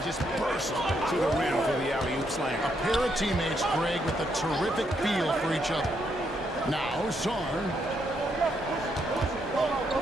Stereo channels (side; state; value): both; normal; correlation 0.76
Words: just burst to the rim for the alley-oop slam. A pair of teammates, Greg, with a terrific feel for each other. Now, Sarr.